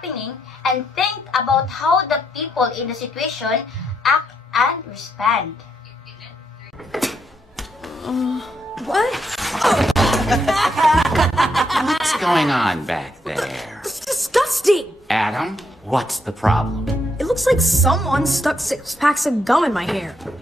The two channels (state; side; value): normal; both; correlation 0.77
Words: and think about how the people in the situation act and respond. What? What's going on back there? It's disgusting! Adam, what's the problem? It looks like someone stuck 6 packs of gum in my hair.